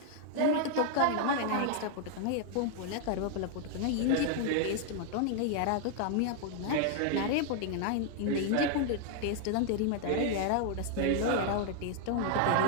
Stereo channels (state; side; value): different; both; correlation 0.00